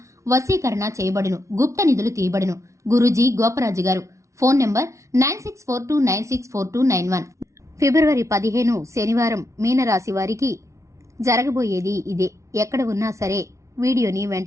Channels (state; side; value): late; left; 0.14 ms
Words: వశీకరణ చేయబడును, గుప్త నిధులు తీయబడును. గురూజీ గోపరాజు గారు. Phone number 9642964291. ఫిబ్రవరి 15 శనివారం మీనరాశి వారికి జరగబోయేది ఇదే. ఎక్కడ ఉన్నా సరే వీడియోని